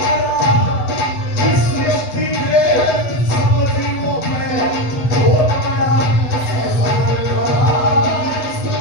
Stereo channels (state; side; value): late; right; 7.9 ms